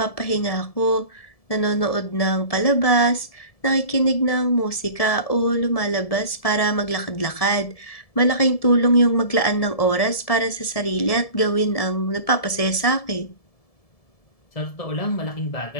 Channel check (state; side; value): late; right; 1.7 ms